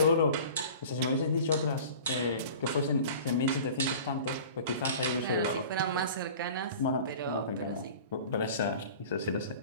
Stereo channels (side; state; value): both; inverted; correlation -0.41